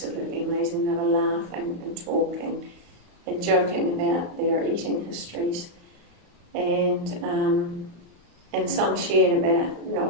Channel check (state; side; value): late; left; 35 ms